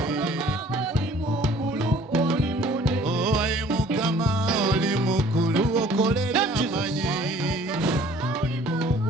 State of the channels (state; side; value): normal; both; correlation 0.54